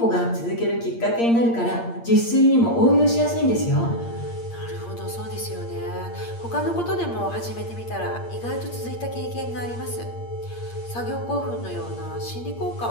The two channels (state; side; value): late; right; 8.6 ms